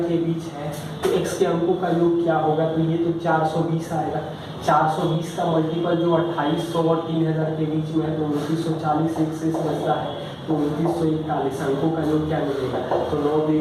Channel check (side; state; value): both; identical; correlation 1.00